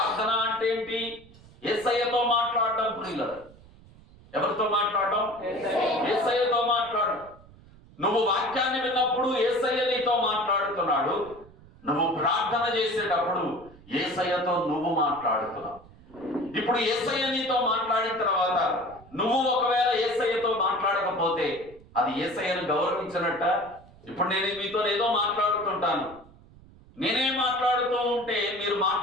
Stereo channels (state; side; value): noise; right; rumble, 23 dB below the sound